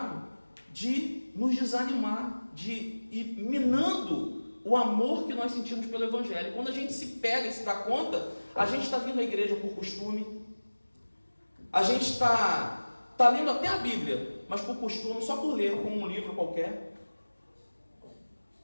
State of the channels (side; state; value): both; inverted; correlation -1.00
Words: de nos desanimar, de ir minando o amor que nós sentimos pelo Evangelho. Quando a gente se pega e se dá conta, a gente está vindo à igreja por costume, a gente está lendo até a Bíblia, mas por costume, só por ler, como um livro qualquer.